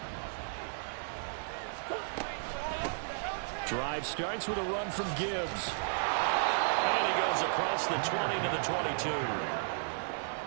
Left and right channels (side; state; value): left; silent; digital silence